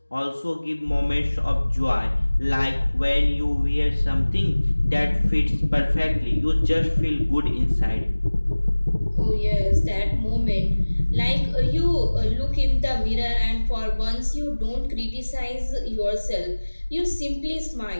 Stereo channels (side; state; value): both; inverted; correlation -1.00